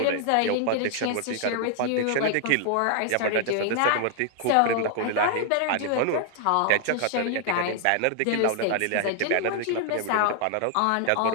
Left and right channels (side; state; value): both; different; correlation 0.00